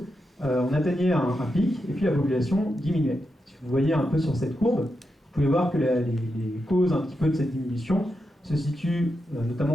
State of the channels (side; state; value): both; normal; correlation 0.86